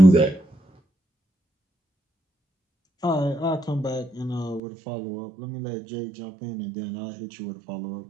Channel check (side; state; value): left; drops out; at 4.6 s